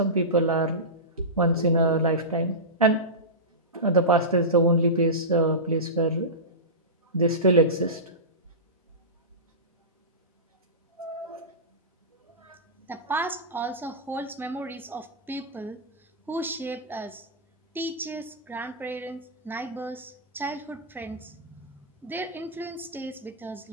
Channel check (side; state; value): both; normal; correlation -0.18